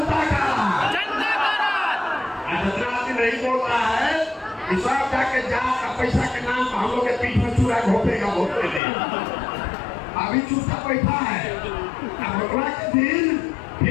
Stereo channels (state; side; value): drops out; right; at 8.8 s